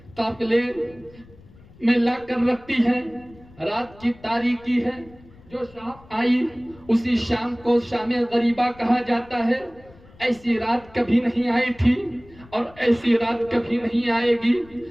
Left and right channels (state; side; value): noise; left; rumble, 24 dB below the sound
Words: قافلے میں لا کر رکھتی ہیں۔ رات کی تاریکی ہے، جو شام آئی اسی شام کو شام غریبہ کہا جاتا ہے۔ ایسی رات کبھی نہیں آئی تھی اور ایسی رات کبھی نہیں آئے گی،